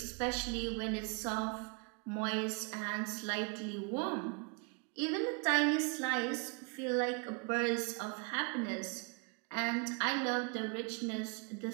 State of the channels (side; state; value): left; quieter; 35.1 dB